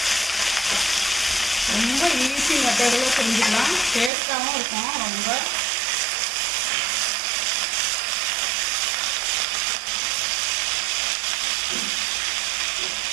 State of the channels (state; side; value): drops out; left; at 4.1 s